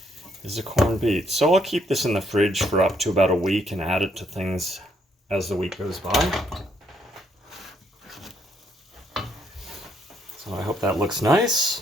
is a corned beet. So I'll keep this in the fridge for up to about a week and add it to things as the week goes by. So I hope that looks nice.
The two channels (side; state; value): both; normal; correlation 0.72